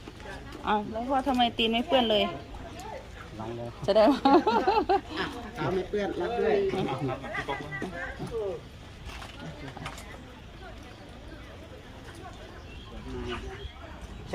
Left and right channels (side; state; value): both; identical; correlation 1.00